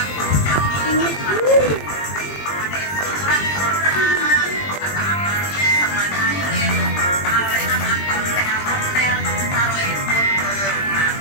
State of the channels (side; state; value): right; late; 20 ms